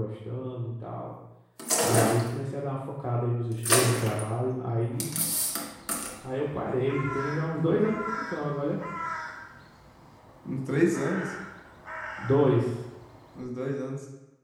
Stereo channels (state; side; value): identical; both; correlation 1.00